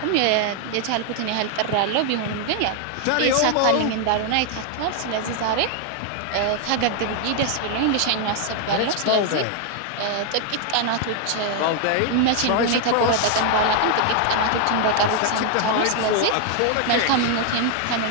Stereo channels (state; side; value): different; both; correlation 0.00